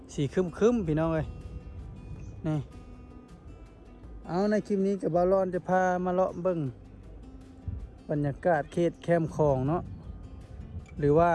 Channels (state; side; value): identical; both; correlation 1.00